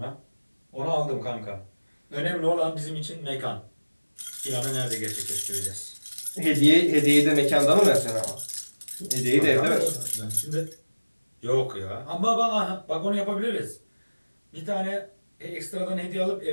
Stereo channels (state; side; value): inverted; both; correlation -1.00